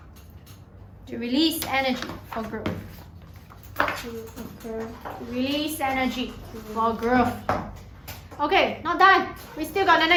to release energy for growth. To occur. To release energy for growth. Okay, not done. We still got the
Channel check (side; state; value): both; identical; correlation 1.00